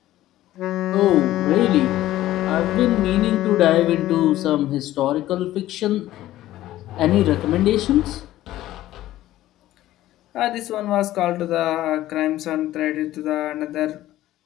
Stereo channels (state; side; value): quieter; right; 14.7 dB